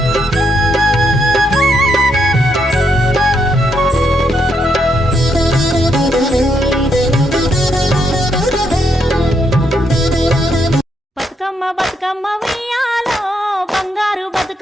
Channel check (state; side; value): normal; both; correlation 0.77